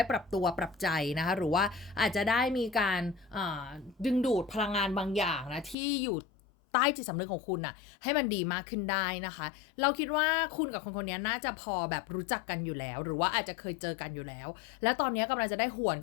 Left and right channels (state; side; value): drops out; right; at 5.8 s